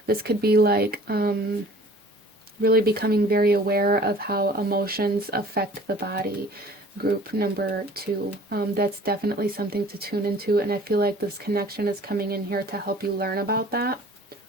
This could be like really becoming very aware of how emotions affect the body. Group number 2. That's definitely something to tune into, and I feel like this connection is coming in here to help you learn about that.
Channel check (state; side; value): normal; both; correlation 0.49